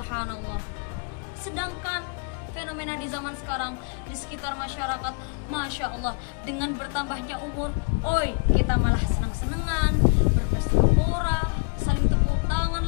Sedangkan fenomena di zaman sekarang di sekitar masyarakat, Masya Allah, dengan bertambahnya umur, kita malah senang-senangan, berpesta pora, saling tepuk tangan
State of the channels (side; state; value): right; quieter; 37.3 dB